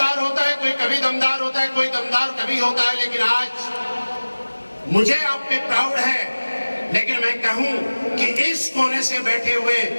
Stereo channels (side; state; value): both; inverted; correlation -1.00